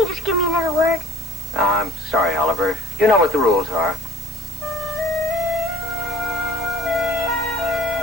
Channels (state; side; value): normal; both; correlation 0.52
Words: you just give me another word? I'm sorry, Oliver. You know what the rules are.